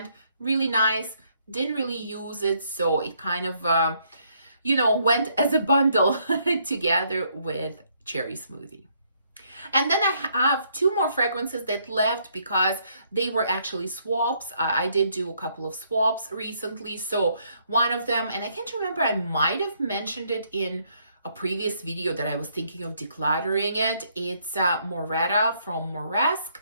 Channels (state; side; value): inverted; both; correlation -0.70